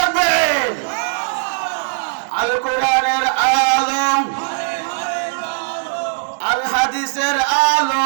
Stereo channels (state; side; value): silent; left; 64 dB below the other